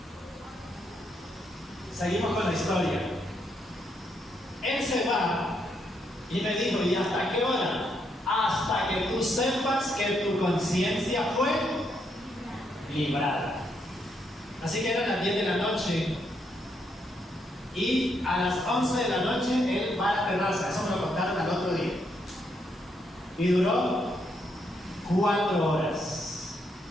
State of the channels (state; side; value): normal; both; correlation 0.77